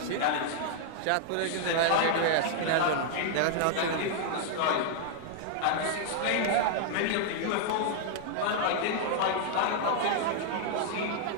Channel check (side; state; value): both; different; correlation 0.00